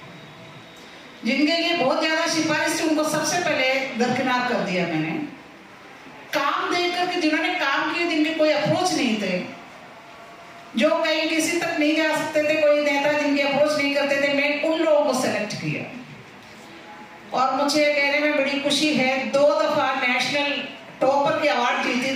जिनके लिए बहुत ज्यादा सिफारिश थी, उनको सबसे पहले दरकिनार कर दिया मैंने। काम देख करके जिन्होंने काम किए, जिनके कोई अप्रोच नहीं थे, जो कहीं किसी तक नहीं जा सकते थे, कोई नेता जिनकी अप्रोच नहीं करते थे, मैं उन लोगों को सेलेक्ट किया। और मुझे कहने में बड़ी खुशी है, 2 दफा नेशनल टॉपर की अवार्ड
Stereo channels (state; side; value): identical; both; correlation 1.00